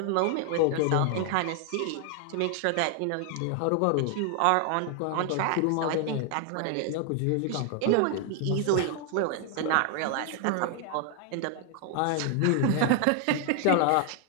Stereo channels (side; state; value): both; different; correlation 0.00